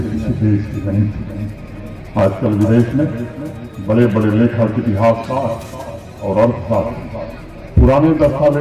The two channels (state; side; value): identical; both; correlation 1.00